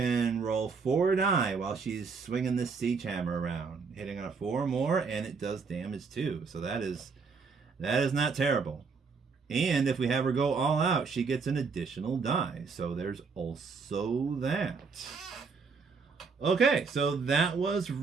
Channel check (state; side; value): quieter; left; 5.1 dB